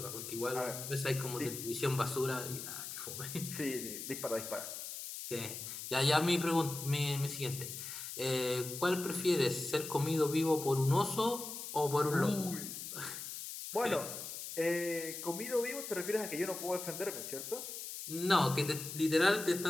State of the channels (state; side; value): noise; left; hiss, 8 dB below the sound